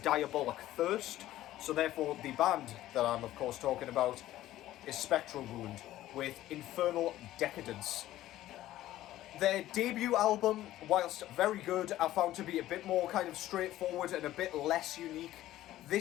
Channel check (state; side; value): quieter; right; 14.5 dB